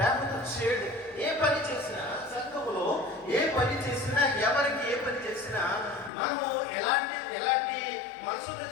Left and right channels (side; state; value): right; drops out; at 6.1 s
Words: చేయడు. ఏ పని చేసినా సంఘములో, ఏ పని చేసినా, ఎవరికి ఏ పని చేసినా మనము ఎలాంటి మనసుతో